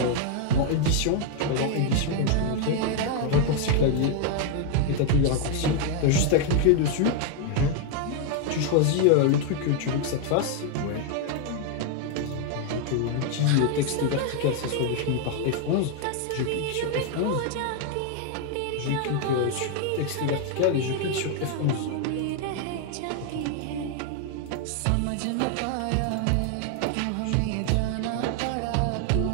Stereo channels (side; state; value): both; different; correlation 0.00